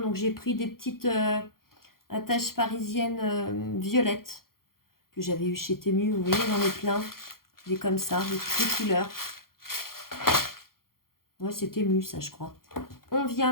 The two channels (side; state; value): right; late; 0.92 ms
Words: j'ai pris des petites attaches parisiennes violettes que j'avais eu chez Temu. Vous voyez, j'en ai plein. Des comme ça, de toutes les couleurs. Ouais, c'était mu, ça, je crois. On vient